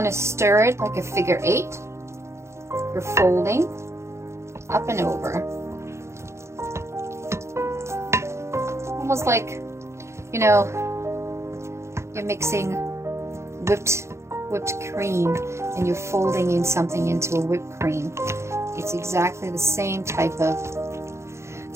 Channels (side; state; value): left; late; 0.13 ms